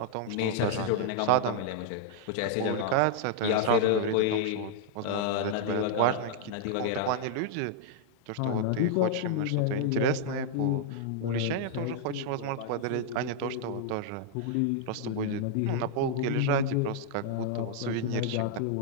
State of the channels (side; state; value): both; different; correlation -0.01